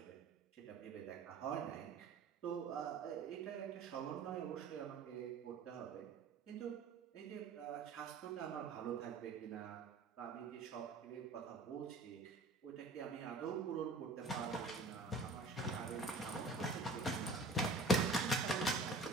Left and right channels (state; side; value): quieter; left; 3.2 dB